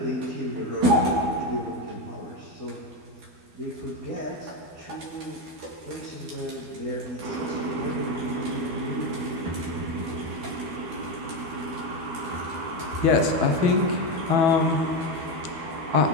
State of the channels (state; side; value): late; left; 12 ms